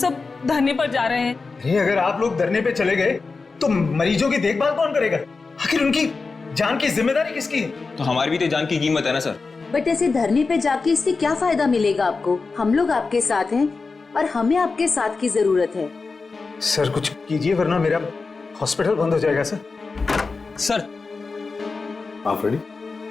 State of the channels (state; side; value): quieter; right; 4.2 dB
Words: धरने पर जा रहे हैं। अरे अगर आप लोग धरने पे चले गए तो मरीजों की देखभाल कौन करेगा? आखिर उनकी जान की जिम्मेदारी किसकी है? तो हमारी भी तो जान की कीमत है ना सर। बट ऐसे धरने पे जाके इससे क्या फायदा मिलेगा आपको? हम लोग आपके साथ हैं और हमें आपके साथ की जरूरत है। सर कुछ कीजिए वरना मेरा हॉस्पिटल बंद हो जाएगा सर। सर। हाँ फ्रेडी,